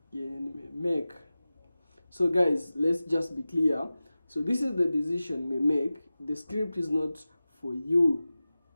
you make. So guys, let's just be clear. So this is the decision we make. The script is not for you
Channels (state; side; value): inverted; both; correlation -0.96